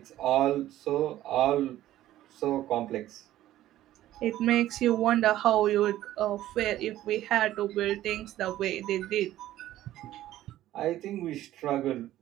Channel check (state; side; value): quieter; left; 13.9 dB